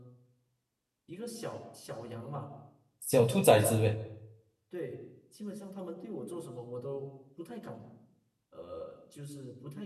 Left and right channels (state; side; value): identical; both; correlation 1.00